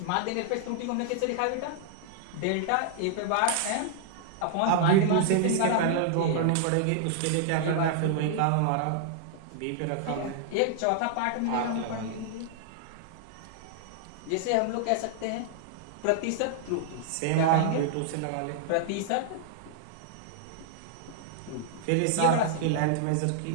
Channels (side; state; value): both; different; correlation -0.01